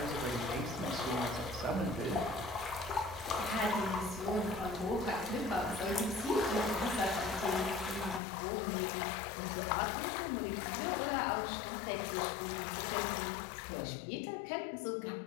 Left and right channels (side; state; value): right; drops out; at 8.2 s